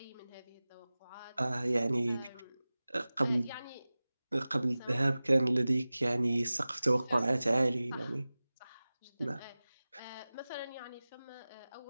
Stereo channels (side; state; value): both; inverted; correlation -0.98